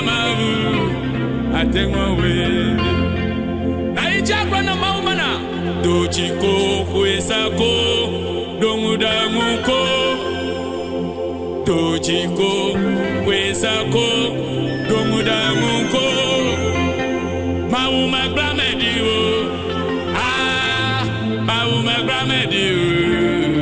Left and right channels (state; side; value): identical; both; correlation 1.00